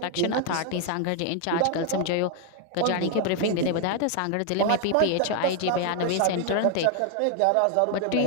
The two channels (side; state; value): both; different; correlation 0.00